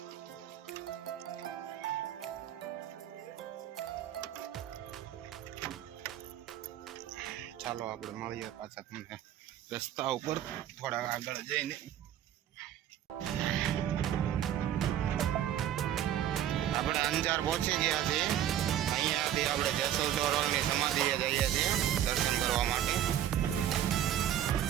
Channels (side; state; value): left; quieter; 11.1 dB